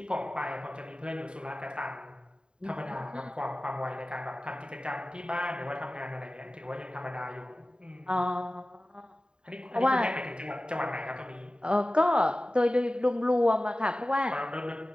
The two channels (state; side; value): late; left; 0.050 ms